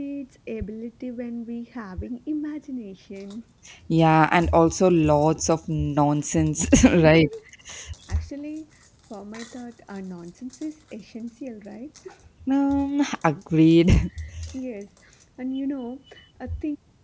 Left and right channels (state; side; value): identical; both; correlation 1.00